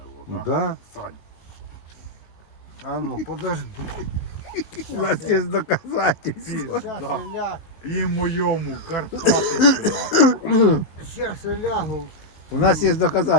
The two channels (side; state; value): right; late; 19 ms